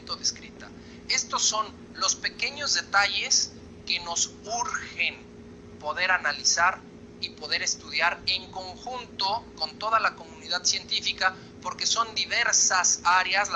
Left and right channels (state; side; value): identical; both; correlation 1.00